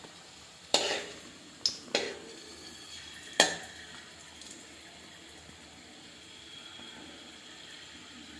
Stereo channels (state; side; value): identical; both; correlation 1.00